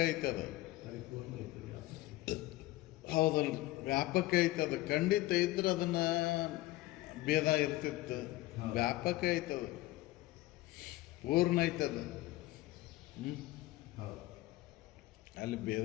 ಐತೆ. ಅದು ಹೌದಲ್ಲ, ವ್ಯಾಪಕ ಐತೆ. ಅದು ಖಂಡಿತ ಇದ್ರೆ ಅದನ್ನ ಭೇದ ಇರ್ತಿತ್ತು. ವ್ಯಾಪಕ ಐತದ, ಪೂರ್ಣ ಐತದ. ಅಲ್ಲಿ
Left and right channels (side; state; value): right; quieter; 17.8 dB